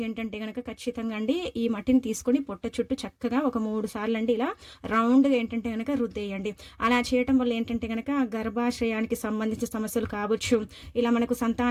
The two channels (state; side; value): identical; both; correlation 1.00